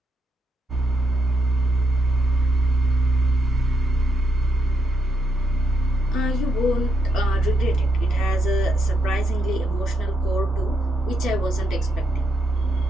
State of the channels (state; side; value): normal; both; correlation 0.78